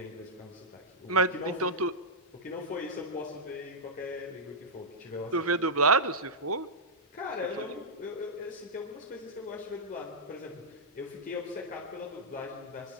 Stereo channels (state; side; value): normal; both; correlation -0.08